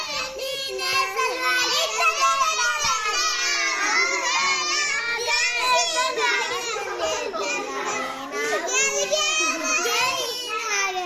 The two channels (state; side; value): identical; both; correlation 1.00